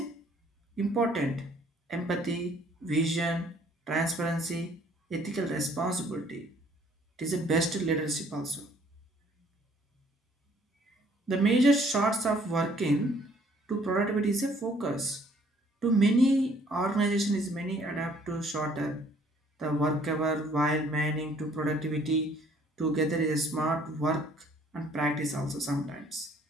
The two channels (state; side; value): normal; both; correlation 0.60